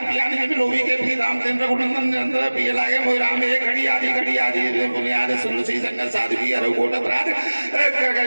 ज्ञान जब लोभी के प्रिय रामचंद्र रघुनंदन निरंतर प्रिय लागे मोहि राम एक घड़ी आदि बुनियाद सुनसी संगत साधु रघुकोट अपराध कर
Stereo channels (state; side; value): inverted; both; correlation -1.00